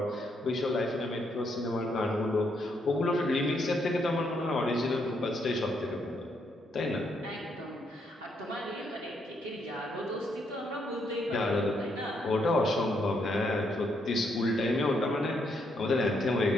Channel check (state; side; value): normal; both; correlation 0.75